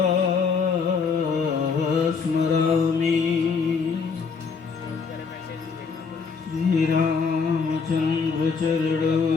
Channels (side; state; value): right; quieter; 5.3 dB